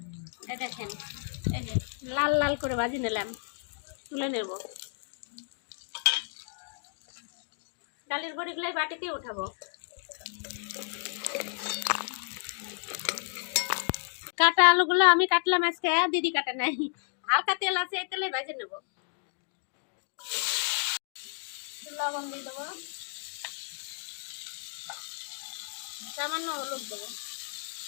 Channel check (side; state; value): right; silent; digital silence